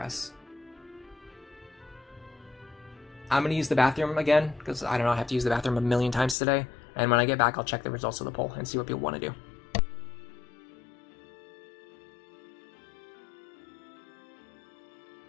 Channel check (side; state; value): right; drops out; at 6.4 s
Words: I'm going to use the bathroom again, because I don't know, I have to use the bathroom a million times today. And when I get back, I'll check the results of the poll and see what people want to do.